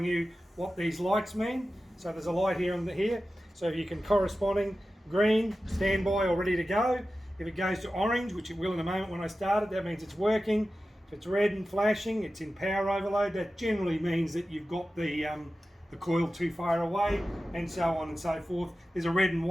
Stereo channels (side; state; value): both; normal; correlation 0.94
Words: you what these lights mean. So there's a light here and here. So if you can corresponding green, standby or ready to go. If it goes to orange, which it will in a moment when I start it, that means it's working. If it's red and flashing, it's in power overload. That generally means that you've got the coil too far away, and so on and so forth. There's a red and